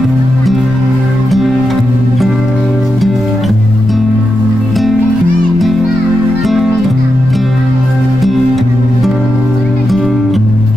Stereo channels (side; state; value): left; noise; rumble, 14 dB below the sound